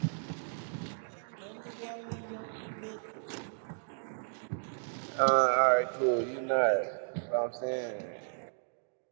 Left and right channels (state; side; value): silent; left; digital silence